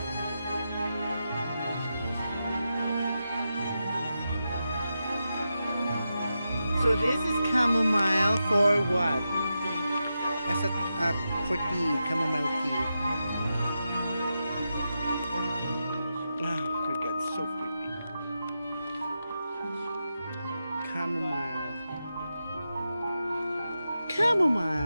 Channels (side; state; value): both; inverted; correlation -0.88